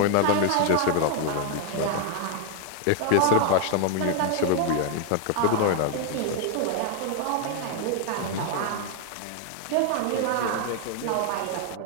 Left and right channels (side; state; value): both; different; correlation 0.00